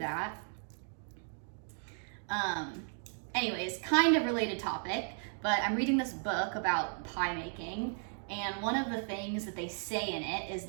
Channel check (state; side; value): silent; left; 54 dB below the other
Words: Anyways, kind of related topic, but I'm reading this book about pie making, and one of the things that they say in it is